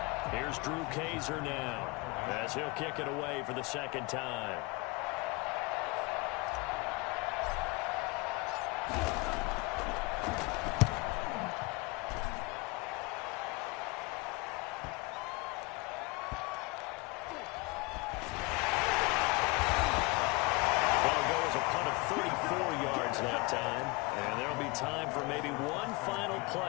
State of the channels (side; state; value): right; quieter; 24.7 dB